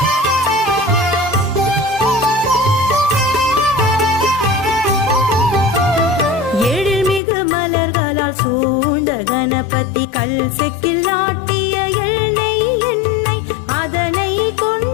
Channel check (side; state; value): right; drops out; at 7.2 s